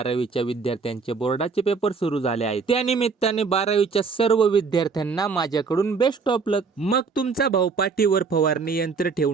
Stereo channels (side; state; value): left; quieter; 4.9 dB